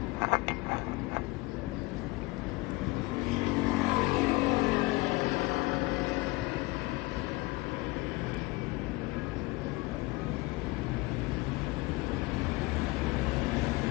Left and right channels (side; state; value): right; quieter; 22.5 dB